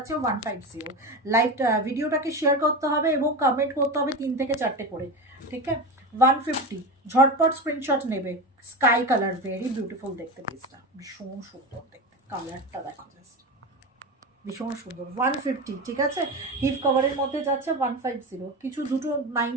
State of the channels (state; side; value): normal; both; correlation 0.23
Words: 150। লাইভ ভিডিওটাকে শেয়ার করতে হবে এবং কমেন্ট করতে হবে 3 থেকে 4টে করে, ঠিক আছে? 150, ঝটপট স্ক্রিনশট নেবে। স্কাই কালার, ভেরি বিউটিফুল দেখতে পিসটা, ভীষণ সুন্দর দেখতে, কালারটা দেখো জাস্ট ভীষণ সুন্দর। 150, ঠিক আছে? হিপ কভারের মধ্যে যাচ্ছে 150। কিছু দুটো